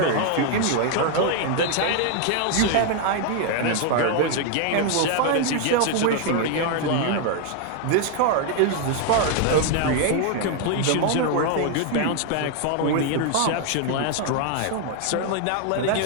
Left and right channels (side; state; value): both; different; correlation 0.00